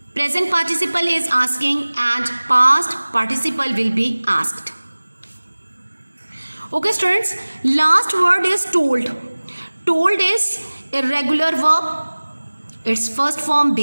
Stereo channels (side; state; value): both; inverted; correlation -1.00